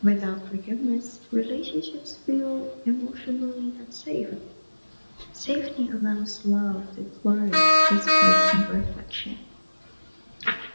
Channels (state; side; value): inverted; both; correlation -1.00